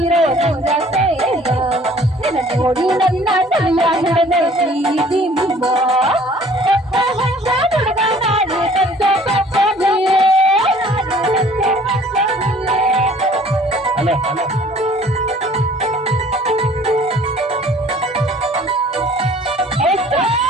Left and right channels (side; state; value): both; normal; correlation 0.53